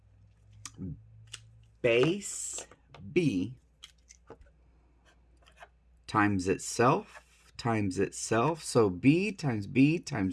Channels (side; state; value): both; identical; correlation 1.00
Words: base B times itself times itself. So B times B